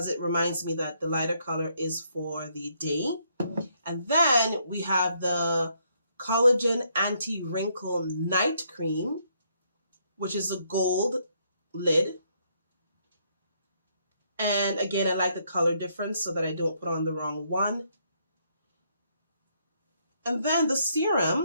it reminds me that the lighter color is for the day. And then we have the Collagen Anti-Wrinkle Night Cream, which is a gold lid. And again, I like the color difference so that I don't put on the wrong one. And then the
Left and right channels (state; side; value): inverted; both; correlation -0.72